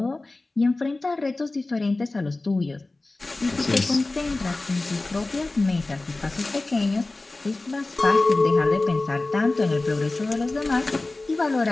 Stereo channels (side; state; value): right; quieter; 3.1 dB